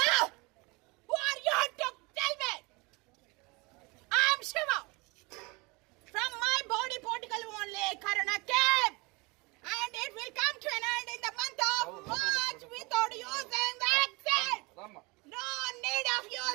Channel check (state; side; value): quieter; left; 26.4 dB